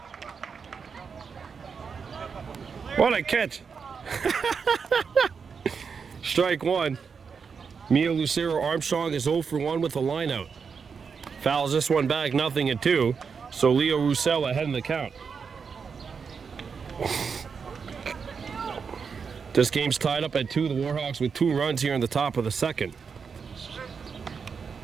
What a catch! Strike 1. Mia Lucero Armstrong is 0 for 1 with a line out. Fouls this one back, 0-2. So Leo Roussel ahead in the count. This game's tied up at 2. The Warhawks with 2 runs here in the top of the second.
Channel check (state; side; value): quieter; left; 5.9 dB